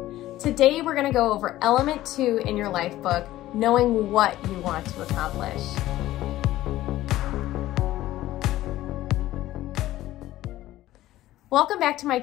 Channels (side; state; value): right; quieter; 15.2 dB